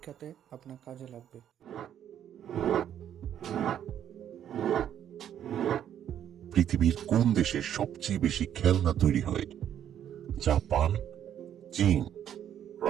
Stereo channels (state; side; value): quieter; left; 10.1 dB